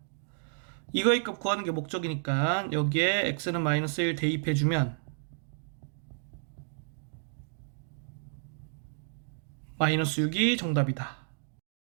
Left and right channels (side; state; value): left; silent; digital silence